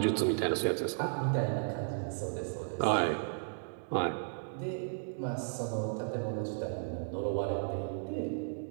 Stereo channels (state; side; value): silent; left; digital silence